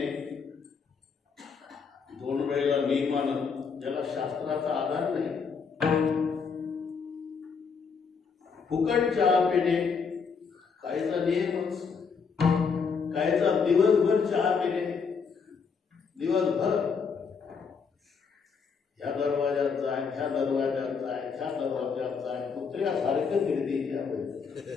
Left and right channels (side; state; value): right; quieter; 5.6 dB